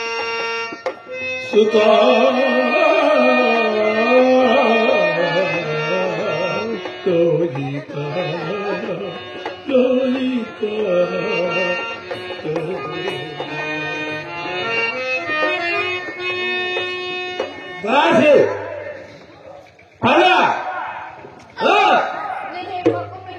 సుతా లోహిత లోహిత రాజు అలా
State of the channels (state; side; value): identical; both; correlation 1.00